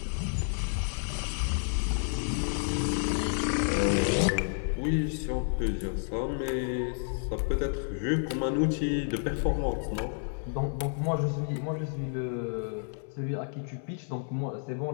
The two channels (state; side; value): silent; right; 58 dB below the other